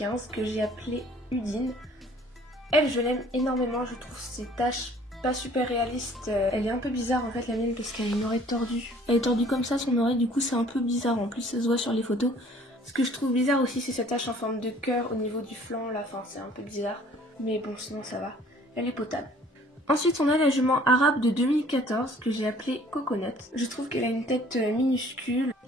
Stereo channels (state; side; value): normal; both; correlation 0.55